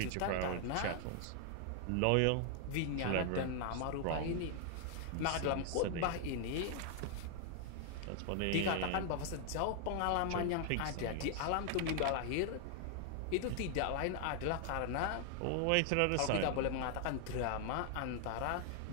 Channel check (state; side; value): different; both; correlation 0.00